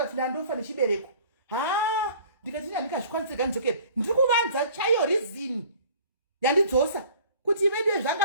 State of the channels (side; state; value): both; inverted; correlation -0.49